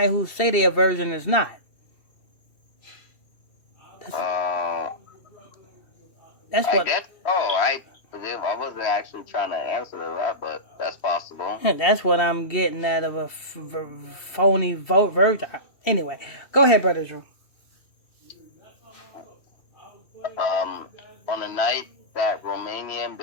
who say they're a virgin is not. That's what. I wasn't actually trying to answer that, but that's possible. That's what I'm getting out of a phony virgin. Anyway, go ahead, Brother Drew. On the night that Romanian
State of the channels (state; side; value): late; right; 2.7 ms